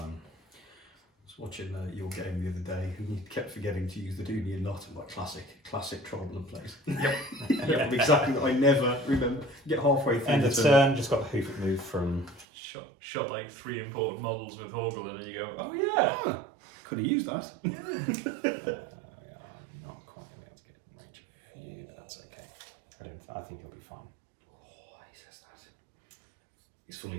I was watching your game the other day, and you kept forgetting to use the Dooney and not. I'm like, classic Tribal plays. Yep. Exactly. I never remember. Get halfway through. End of turn, just got the hoof it move from. Shot like 3 imported models with Horgel, and then you go, oh yeah. Ah, could have used that. We are not quite going to be able to get in range of here, but that's okay. I think he'll be fine. Oh, he says that. He's fully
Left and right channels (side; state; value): left; drops out; at 12.5 s